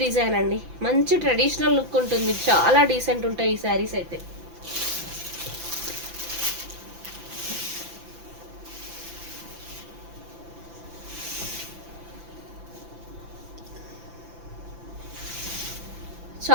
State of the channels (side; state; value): left; late; 5.9 ms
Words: డిజైన్ అండి, మంచి ట్రెడిషనల్ లుక్ ఉంటుంది, చాలా డీసెంట్ ఉంటాయి ఈ శారీస్ అయితే.